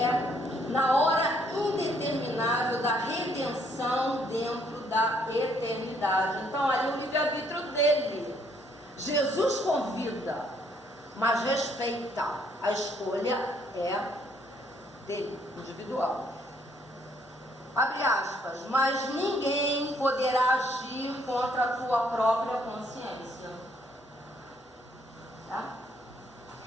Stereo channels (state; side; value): normal; both; correlation 0.67